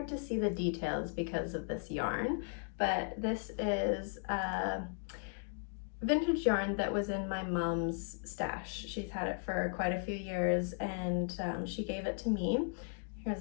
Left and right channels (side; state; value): right; silent; 53 dB below the other